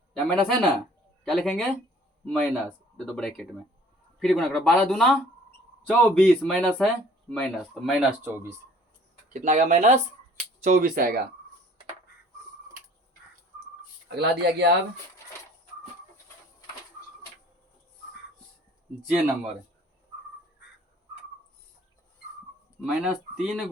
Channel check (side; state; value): both; normal; correlation 0.53